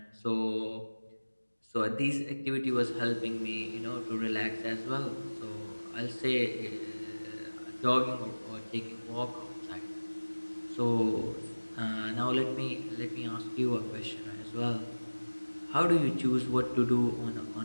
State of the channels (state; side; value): inverted; both; correlation -1.00